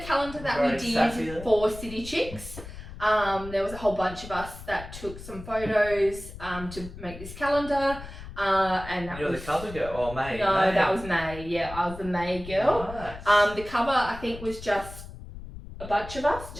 calendar that Very we sassy did there. for City Chicks. There was a whole bunch of us that took some photos to make this calendar. And that You're was the cover girl, or May? No, May. that was May. Yeah, I was the May girl. Nice. The cover I think was just a bunch of us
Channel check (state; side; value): noise; left; rumble, 13 dB below the sound